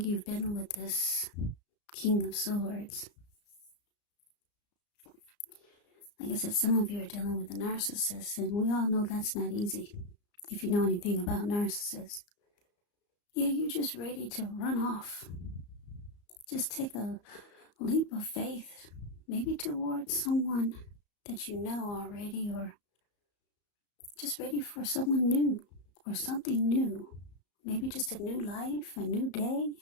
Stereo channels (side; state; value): right; late; 34 ms